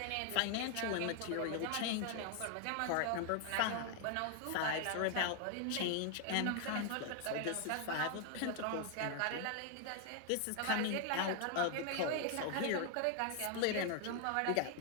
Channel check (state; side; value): different; both; correlation 0.00